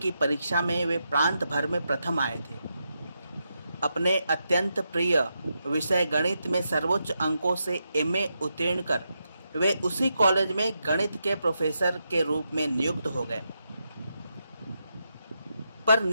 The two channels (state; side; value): inverted; both; correlation -0.84